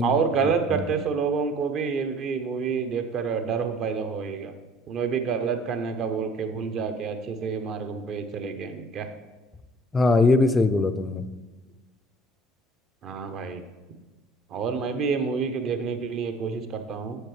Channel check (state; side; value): normal; both; correlation 0.51